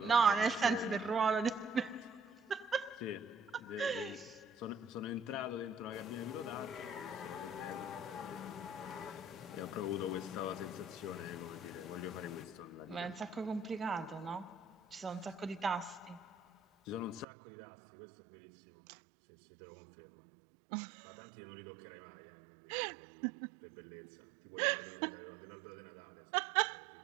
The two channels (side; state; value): left; drops out; at 17.2 s